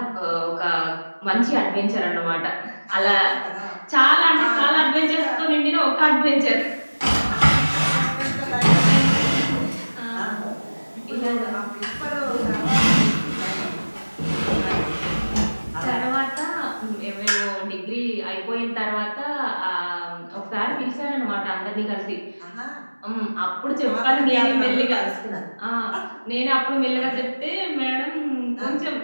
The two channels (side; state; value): both; inverted; correlation -1.00